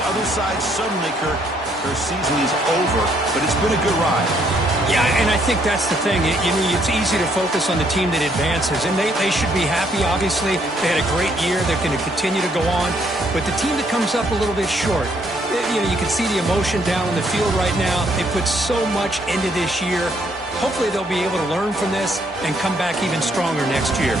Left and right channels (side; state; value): both; normal; correlation 0.69